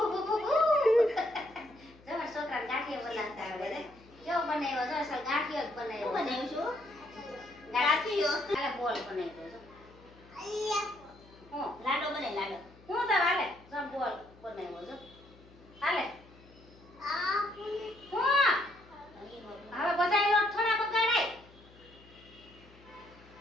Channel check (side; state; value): left; noise; hum, 24 dB below the sound